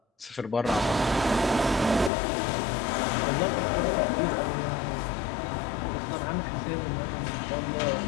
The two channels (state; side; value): drops out; right; at 2.1 s